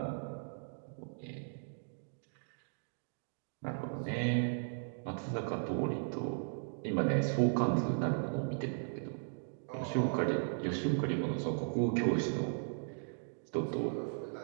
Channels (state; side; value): silent; left; digital silence